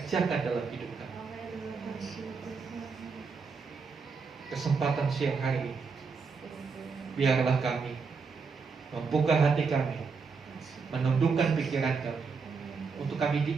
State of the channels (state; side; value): quieter; left; 5.0 dB